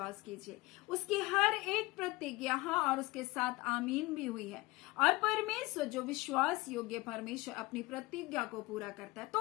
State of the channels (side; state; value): right; quieter; 21.4 dB